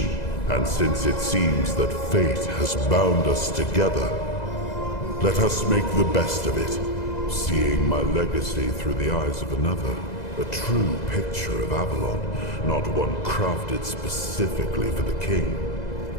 And since it seems that fate has bound us together, let us make the best of it. Seeing my legacy through the eyes of another, a true picture of Avalon, not one crafted specifically for the king,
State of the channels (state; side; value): late; right; 2.0 ms